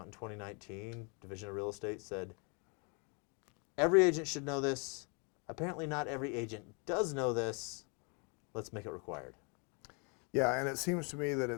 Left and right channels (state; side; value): quieter; right; 35.1 dB